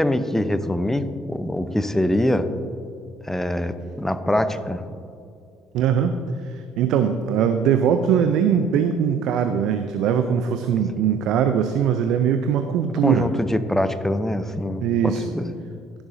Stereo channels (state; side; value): quieter; left; 4.2 dB